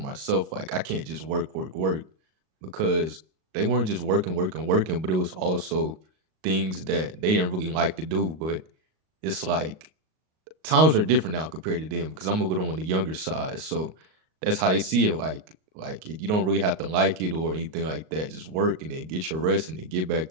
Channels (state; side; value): late; left; 38 ms